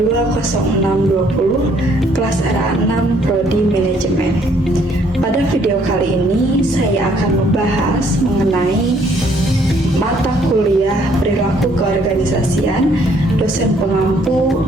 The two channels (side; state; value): both; normal; correlation 0.65